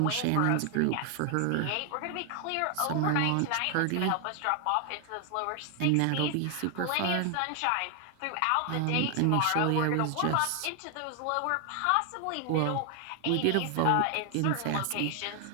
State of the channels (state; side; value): different; both; correlation 0.00